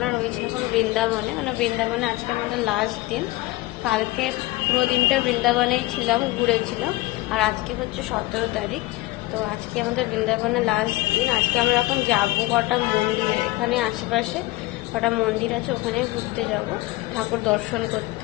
রয়েছি এখন বৃন্দাবনে, মানে বৃন্দাবনে আজকে আমাদের লাস্ট দিন। কালকে পুরো দিনটা বৃন্দাবনেই ছিলাম, ঘুরেছিলাম। আর আজকে হচ্ছে 17 তারিখ। তো আজকে আমাদের বৃন্দাবনে লাস্ট দিন। আজকে আমরা এখন যাবো কটা মন্দিরে, এখানে আশেপাশে কটা মন্দির আছে, ওখানে ঘুরতে যাব ঠাকুর দর্শন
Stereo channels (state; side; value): quieter; right; 19.4 dB